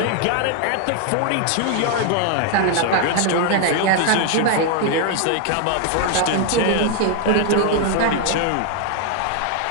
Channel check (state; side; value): different; both; correlation 0.00